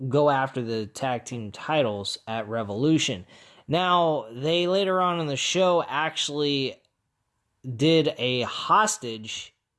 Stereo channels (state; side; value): identical; both; correlation 1.00